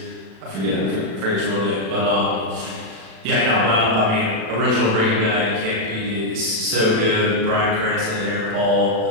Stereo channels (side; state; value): left; late; 36 ms